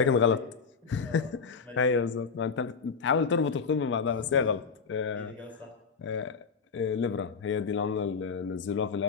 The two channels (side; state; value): right; quieter; 5.5 dB